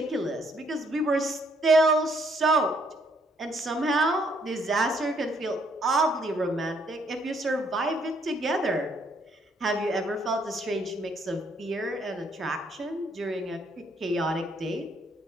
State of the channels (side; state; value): both; normal; correlation 0.69